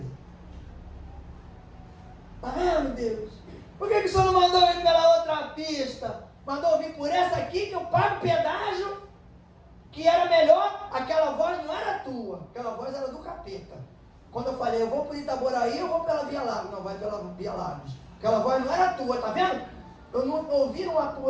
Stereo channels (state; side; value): identical; both; correlation 1.00